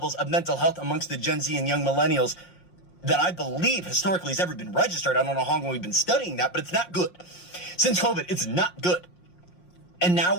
of mental health amongst the Gen Z and young millennials that I believe historically has ever been registered. I don't know how long we've been studying that, but it's not good. Since COVID, it's not good. And now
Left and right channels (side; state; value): right; late; 5.6 ms